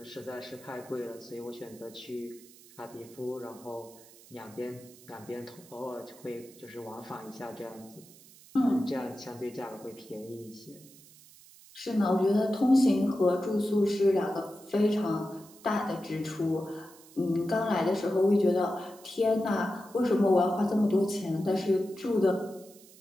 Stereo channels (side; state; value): right; noise; hiss, 23 dB below the sound